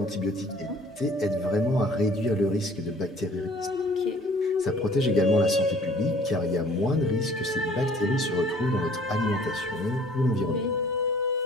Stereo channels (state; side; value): normal; both; correlation 0.54